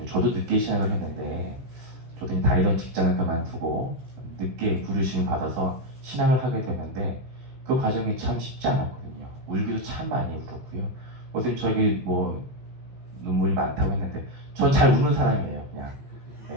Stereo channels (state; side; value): late; left; 16 ms